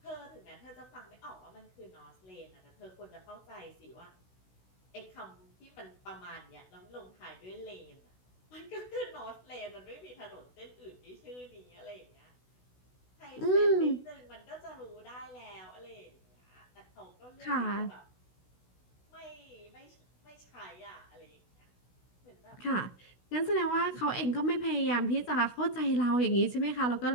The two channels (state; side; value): late; right; 16 ms